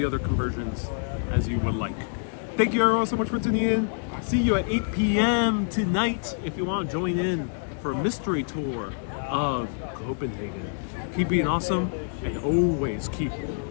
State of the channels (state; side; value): silent; right; digital silence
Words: other conversions as you would like. Thank you everyone so much for tuning in. See you at 8 p.m. tonight if you want to join in for a mystery tour of Copenhagen. Keep being awesome and always keep